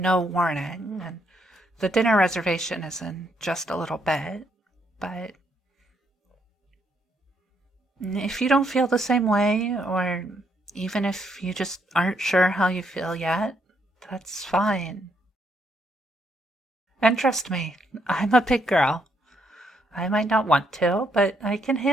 warning, and the dinner reservation is in just a little bit, but if you don't feel the same way, or even if you just aren't sure how you feel yet, that's fine. And trust me, I'm a big girl. I might not want to, but I can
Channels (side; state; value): both; normal; correlation 0.74